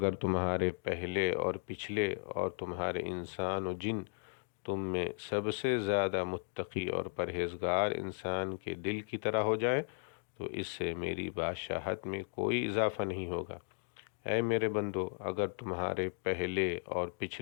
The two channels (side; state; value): right; silent; digital silence